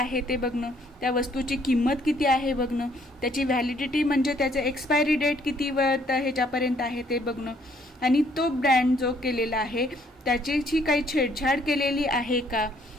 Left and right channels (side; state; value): both; normal; correlation 0.65